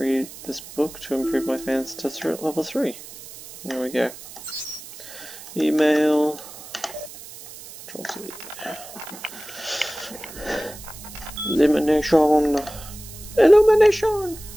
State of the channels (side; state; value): right; noise; hiss, 15 dB below the sound